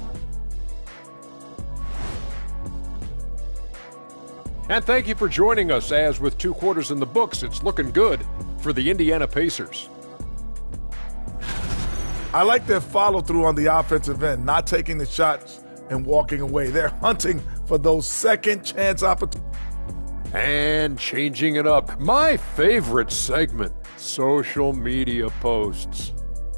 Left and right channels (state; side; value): inverted; both; correlation -1.00